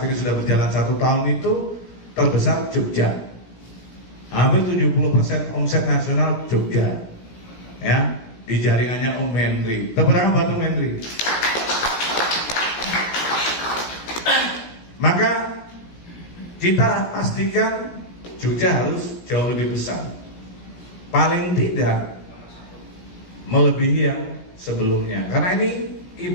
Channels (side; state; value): right; late; 17 ms